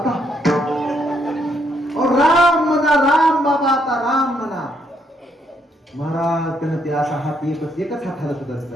राम म्हणा, राम बाबा, आता राम म्हणा. महाराज त्यानं ते असा हात एकच हात हालत होता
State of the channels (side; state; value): both; normal; correlation 0.74